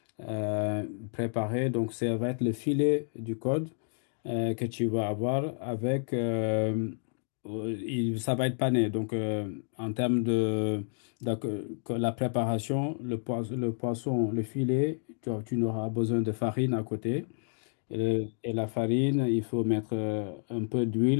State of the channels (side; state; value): right; silent; digital silence